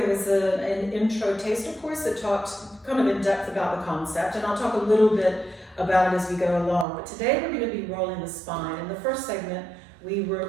was an intro taster course that talked kind of in depth about the concept, and I'll talk a little bit about it as we go along. But today we're going to be rolling the spine. In the first segment, we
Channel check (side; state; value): left; drops out; at 6.9 s